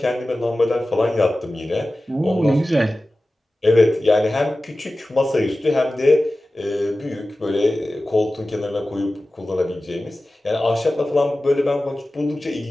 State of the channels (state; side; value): normal; both; correlation 0.96